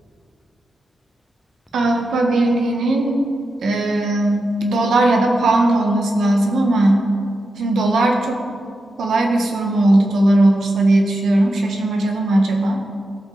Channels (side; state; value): both; normal; correlation 0.89